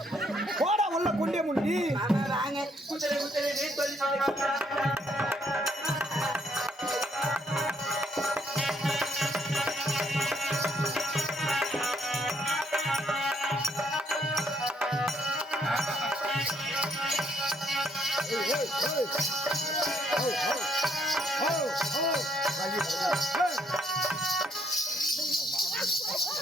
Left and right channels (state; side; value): normal; both; correlation 0.69